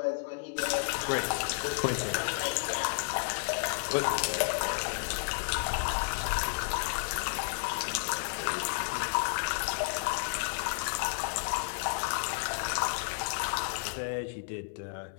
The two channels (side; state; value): right; silent; digital silence